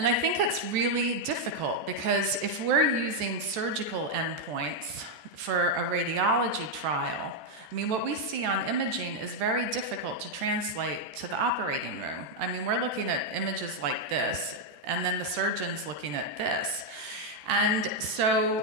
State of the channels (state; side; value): late; left; 14 ms